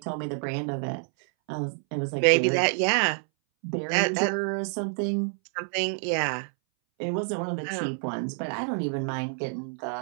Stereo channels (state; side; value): silent; left; 60 dB below the other